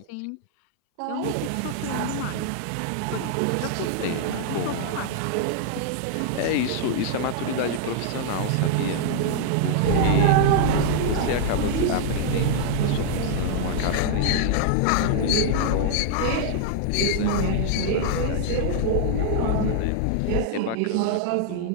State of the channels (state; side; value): different; both; correlation -0.01